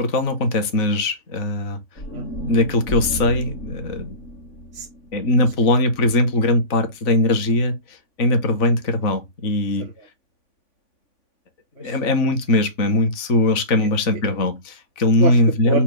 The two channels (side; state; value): right; late; 3.5 ms